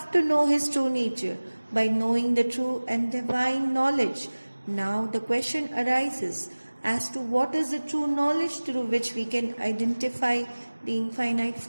to know his true nature by knowing the true and divine knowledge. Now the question arises as to what is the true knowledge through which we can identify the infinite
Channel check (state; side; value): inverted; both; correlation -1.00